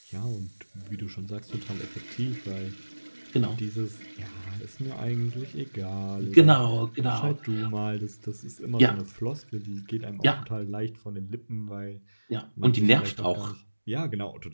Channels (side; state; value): both; inverted; correlation -1.00